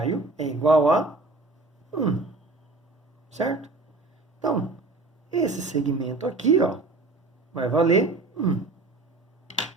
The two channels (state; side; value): quieter; left; 3.3 dB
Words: é igual a 1, certo? Então, esse segmento aqui, vai valer 1.